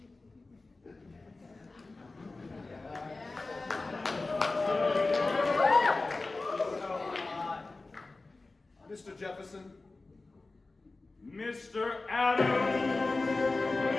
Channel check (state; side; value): quieter; right; 3.4 dB